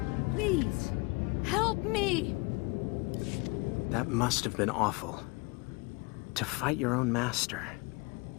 Please, help me! That must have been awful. To fight your own master.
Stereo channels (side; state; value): right; quieter; 27.7 dB